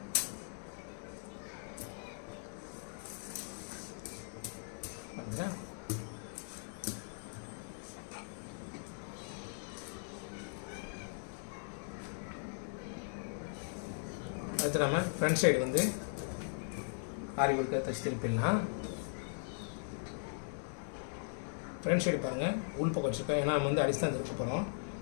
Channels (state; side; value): silent; right; digital silence